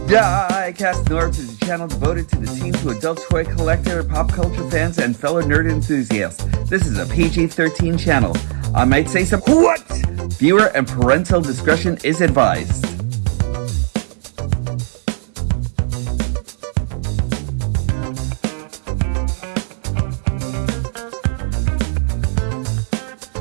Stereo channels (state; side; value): silent; left; digital silence